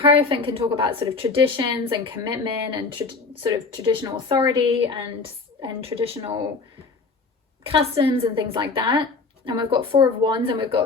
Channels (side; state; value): right; quieter; 4.2 dB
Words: can talk about sort of traditions and commitment and sort of traditional authority and traditional customs and things like that. And we've got Four of Wands, and we've